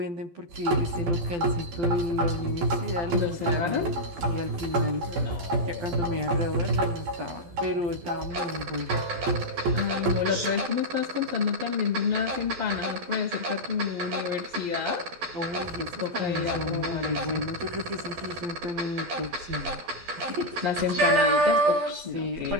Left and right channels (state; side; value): late; left; 12 ms